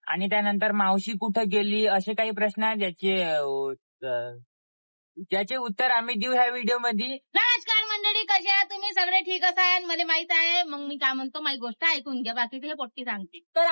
आणि त्यानंतर मावशी कुठे गेली, असे काही प्रश्न आहेत ज्याचे उत्तर आम्ही देऊ ह्या व्हिडिओ मध्ये. नमस्कार मंडळी, कसे आहात तुम्ही? सगळे ठीक असाल मला माहित आहे. मग मी काय म्हणतो, माझी गोष्ट ऐकून घ्या, बाकीचे हे पोट्टी सांगते. तर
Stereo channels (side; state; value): both; inverted; correlation -1.00